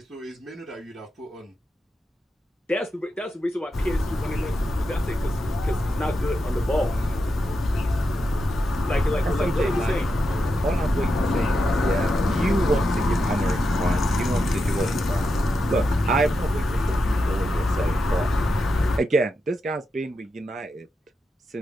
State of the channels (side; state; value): both; normal; correlation 0.87